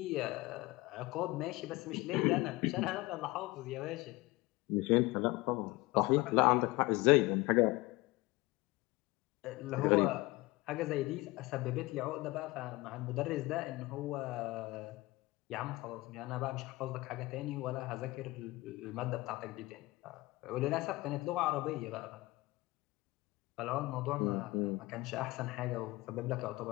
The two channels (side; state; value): right; quieter; 21.1 dB